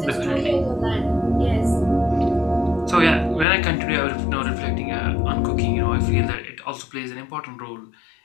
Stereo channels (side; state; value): right; drops out; at 3.5 s